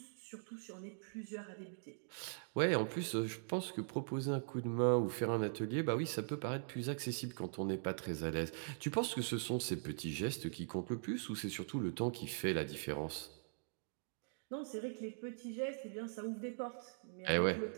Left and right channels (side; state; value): left; silent; digital silence